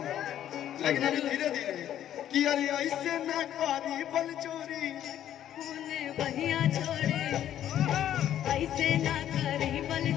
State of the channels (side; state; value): right; quieter; 11.1 dB